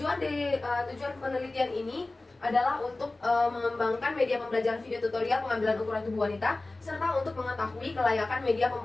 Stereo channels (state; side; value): quieter; right; 3.0 dB